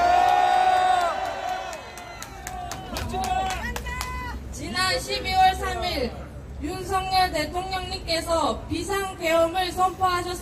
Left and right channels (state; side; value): identical; both; correlation 1.00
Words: 지난 12월 3일 윤석열 대통령님께서 비상계엄을